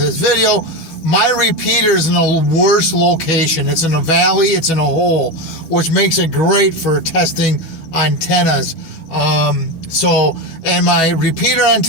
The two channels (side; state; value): right; late; 12 ms